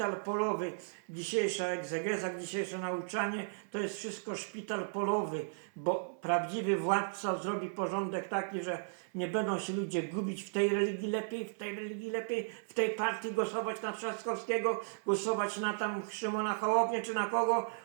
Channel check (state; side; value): silent; left; 54 dB below the other